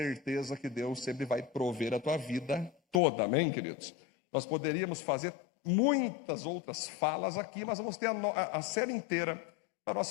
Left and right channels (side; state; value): right; drops out; at 3.0 s